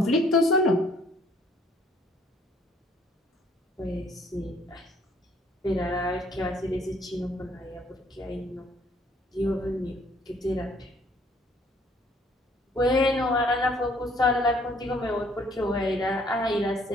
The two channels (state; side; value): normal; both; correlation 0.62